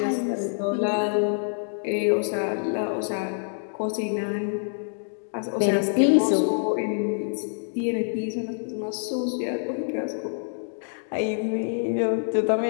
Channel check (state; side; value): silent; right; digital silence